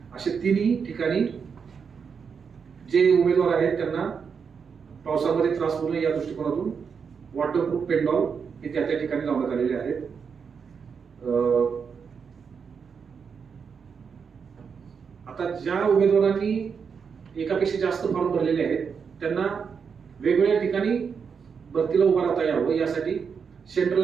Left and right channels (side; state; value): left; quieter; 6.2 dB